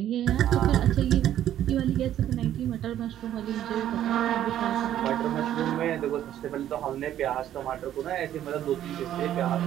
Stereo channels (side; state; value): left; quieter; 11.5 dB